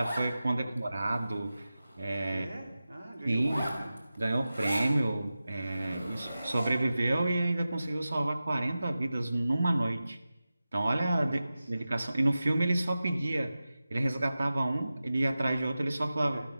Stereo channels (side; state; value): both; inverted; correlation -0.95